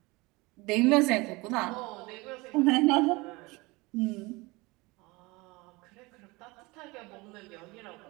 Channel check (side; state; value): left; quieter; 23.9 dB